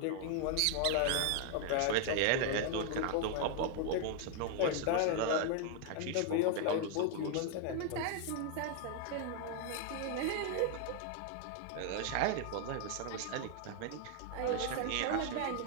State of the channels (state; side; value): different; both; correlation 0.00